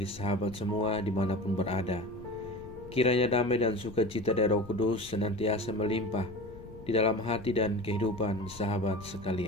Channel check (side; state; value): left; noise; rumble, 17 dB below the sound